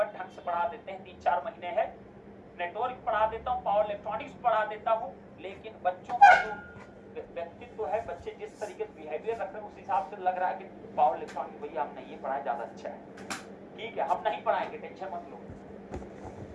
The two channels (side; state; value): both; identical; correlation 1.00